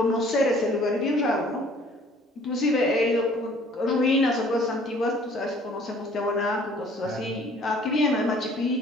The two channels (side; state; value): both; normal; correlation 0.55